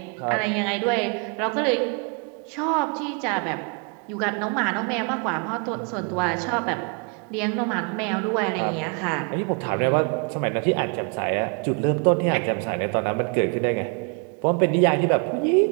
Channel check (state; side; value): quieter; left; 36.0 dB